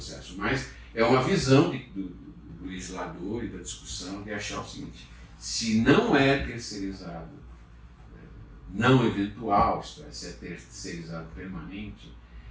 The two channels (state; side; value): identical; both; correlation 1.00